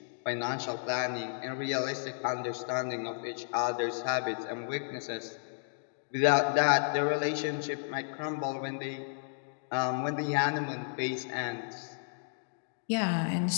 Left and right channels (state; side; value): silent; right; digital silence